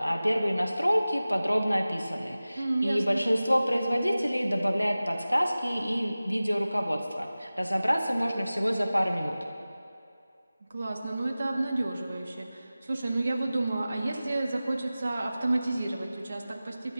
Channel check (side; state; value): both; inverted; correlation -0.97